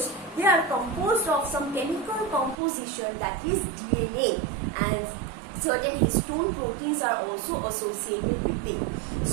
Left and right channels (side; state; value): left; drops out; at 2.6 s